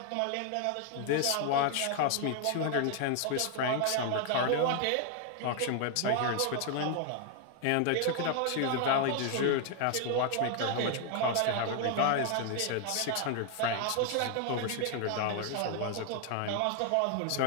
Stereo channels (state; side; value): different; both; correlation 0.00